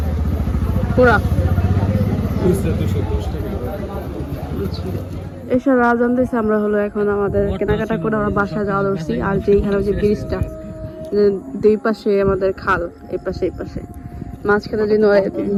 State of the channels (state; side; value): identical; both; correlation 1.00